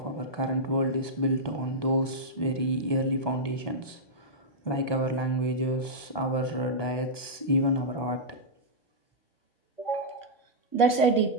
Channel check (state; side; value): late; right; 1.2 ms